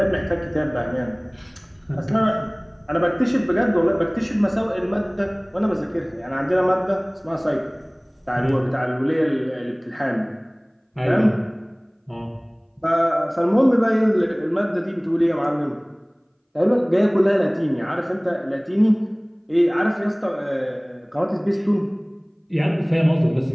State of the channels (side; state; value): both; identical; correlation 1.00